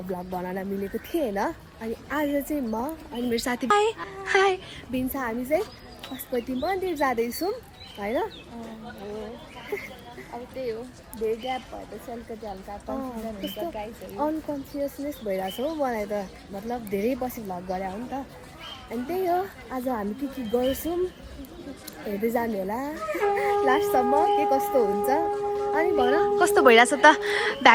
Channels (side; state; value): both; identical; correlation 1.00